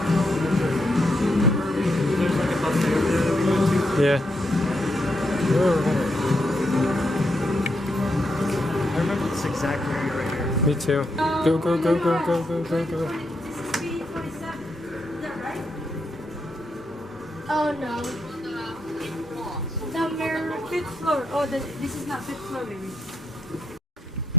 Yeah. I remember this exact area right here. Me too. Go, go, go, go, go, go, go, go. Oh no. Number 5th floor. Oh, this is not 5th floor, maybe.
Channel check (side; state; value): both; normal; correlation 0.80